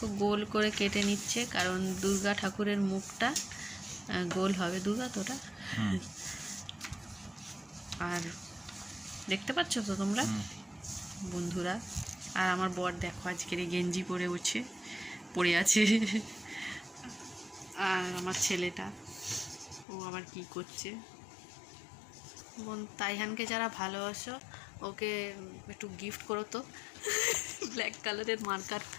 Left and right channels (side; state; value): right; drops out; at 19.9 s